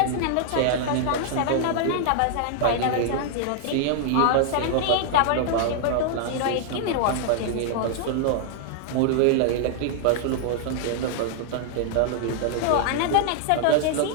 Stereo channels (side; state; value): both; different; correlation -0.01